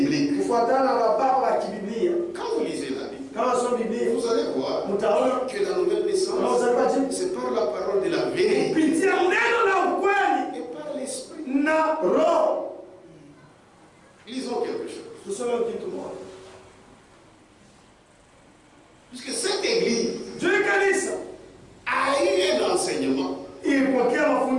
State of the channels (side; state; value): both; identical; correlation 1.00